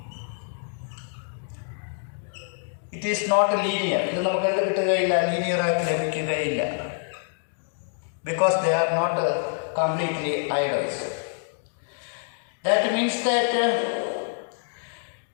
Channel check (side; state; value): right; silent; digital silence